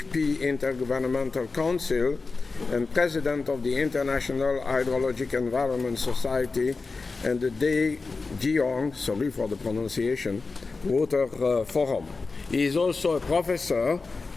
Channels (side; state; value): right; quieter; 4.1 dB